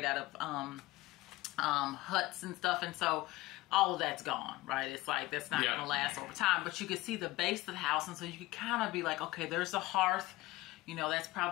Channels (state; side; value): quieter; right; 19.4 dB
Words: out of huts and stuff. And so all of that's gone, right? It's like, that's not going to last over time, but you could see the base of the house. And so you could kind of be like, okay, there's the hearth, that's